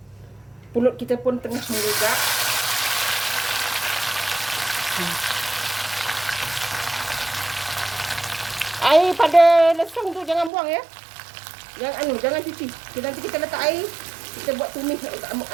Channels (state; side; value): drops out; left; at 10.5 s